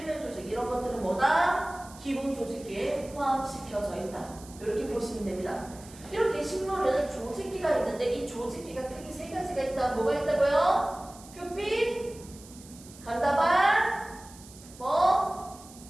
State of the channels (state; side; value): noise; right; hiss, 20 dB below the sound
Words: 조직 이런 것들은 뭐다? 기본 조직계에 포함시켜져 있다. 이렇게 보시면 됩니다. 이렇게 식물은 조직계가 있는데 이 조직계가 크게 세 가지가 있다. 뭐가 있다고요? 표피, 간다발,